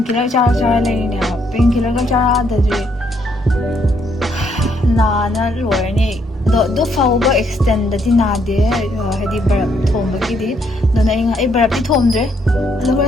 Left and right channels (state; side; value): normal; both; correlation 0.72